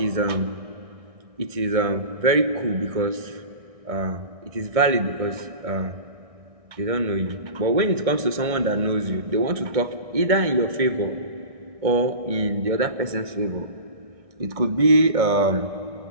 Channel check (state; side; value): late; left; 1.6 ms